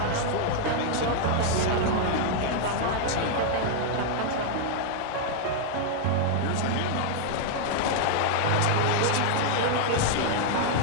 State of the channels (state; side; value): different; both; correlation 0.00